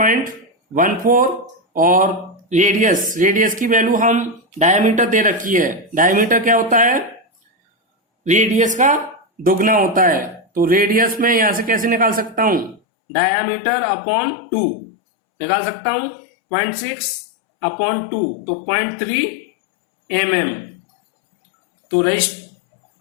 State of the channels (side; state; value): right; drops out; at 12.8 s